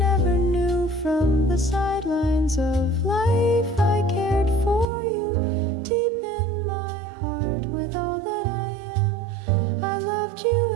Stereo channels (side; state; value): left; drops out; at 4.9 s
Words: knew. From the sidelines of life I cared for you, deep in my heart with all that I am. I loved you